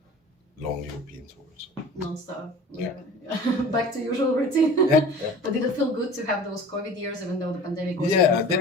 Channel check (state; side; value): normal; both; correlation 0.42